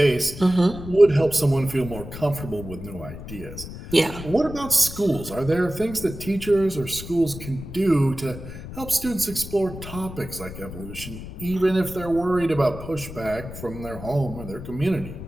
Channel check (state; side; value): noise; left; rumble, 11 dB below the sound